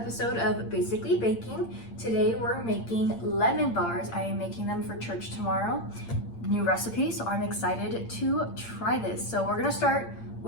of Basically Baking. Today we're making lemon bars. I am making them for church tomorrow. New recipe, so I'm excited to try this. So we're gonna start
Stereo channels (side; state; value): right; late; 8.7 ms